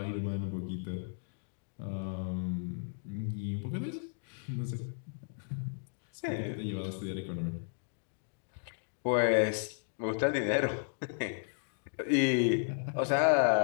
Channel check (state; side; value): silent; right; digital silence